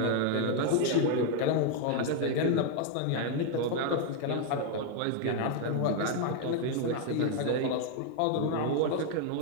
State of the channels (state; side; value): different; both; correlation 0.01